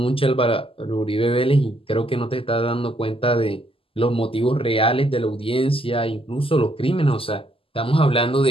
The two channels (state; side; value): late; right; 0.26 ms